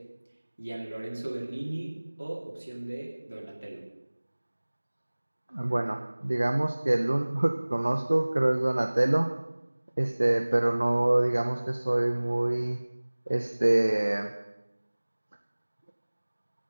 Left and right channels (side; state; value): both; inverted; correlation -1.00